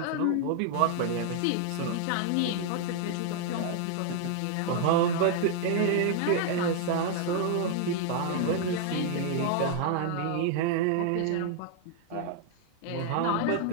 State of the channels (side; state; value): both; different; correlation 0.00